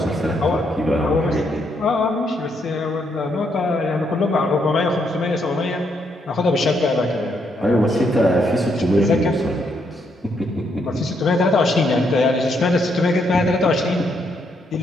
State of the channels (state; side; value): normal; both; correlation 0.75